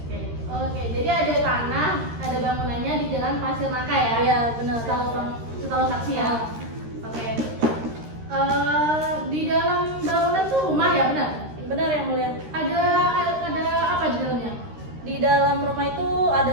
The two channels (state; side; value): late; left; 13 ms